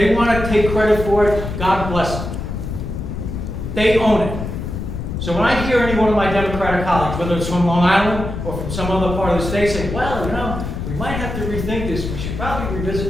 want to take credit for it, God bless them. They own it. So when I hear any one of my Democratic colleagues, whether it's from Long Island or from some other part of the state, say, well, you know, we might have to rethink this. We should probably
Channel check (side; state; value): left; noise; rumble, 5 dB below the sound